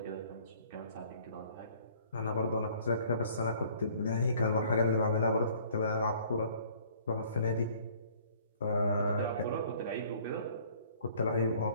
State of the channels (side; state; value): both; inverted; correlation -0.56